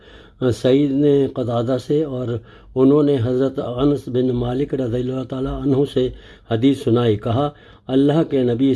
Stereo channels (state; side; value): identical; both; correlation 1.00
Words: سعید نے قتادہ سے اور انہوں نے حضرت انس بن مالک رضی اللہ تعالیٰ عنہ سے حدیث سنائی۔ کہا، اللہ کے نبی